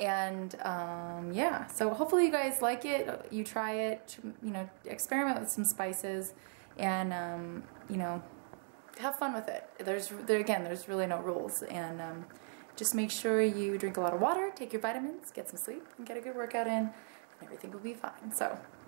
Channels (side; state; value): left; silent; 53 dB below the other